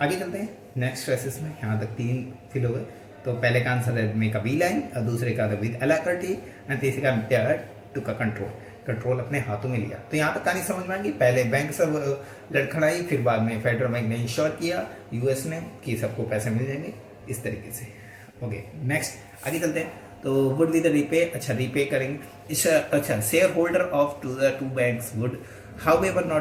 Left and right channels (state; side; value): identical; both; correlation 1.00